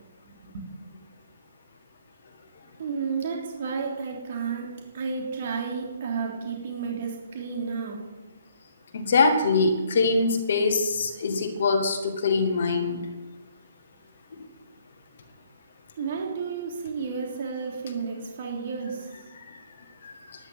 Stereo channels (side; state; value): both; inverted; correlation -0.64